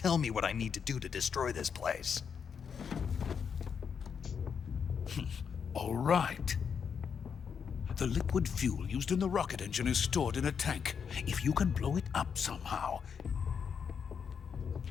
me what I need to do to destroy this place. All right. The liquid fuel used in the rocket engine is stored in a tank. If you can blow it up somehow...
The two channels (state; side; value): quieter; right; 6.8 dB